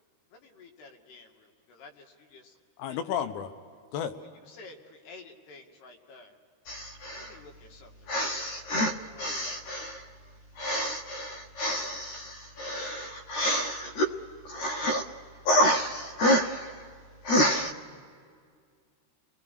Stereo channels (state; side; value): late; right; 13 ms